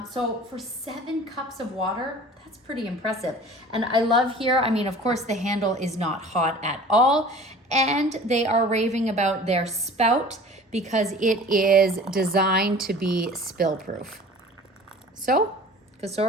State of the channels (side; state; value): both; normal; correlation 0.44